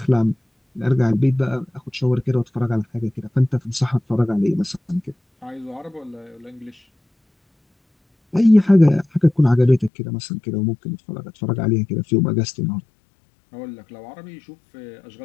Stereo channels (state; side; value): drops out; right; at 9.9 s